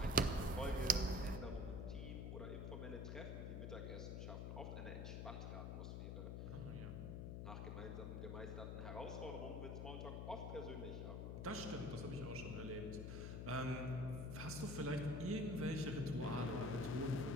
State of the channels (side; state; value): left; noise; hum, 3 dB below the sound